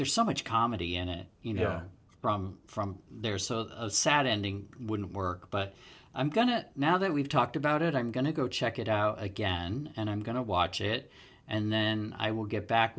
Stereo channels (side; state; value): both; identical; correlation 1.00